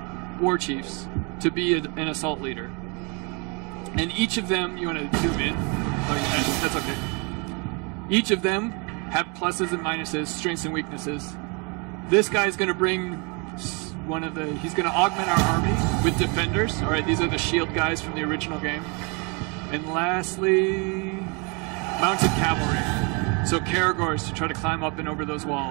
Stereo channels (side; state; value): left; quieter; 32.4 dB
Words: war chiefs to be an assault leader. And each of them, you want to zoom in? Oh, yeah, that's okay. Each of them have pluses and minuses, strengths and weaknesses. This guy's going to bring he's going to augment our army with defenders. All right, these are the shield guys from the original game. And lastly, mounted cavalry. So Karagors to try to climb up and over those